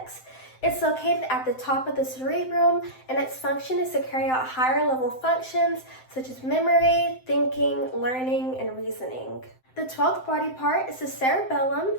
It's located at the top of the cerebrum, and its function is to carry out higher level functions such as memory, thinking, learning, and reasoning. The 12th body part is the cerebellum.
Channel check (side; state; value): right; late; 7.8 ms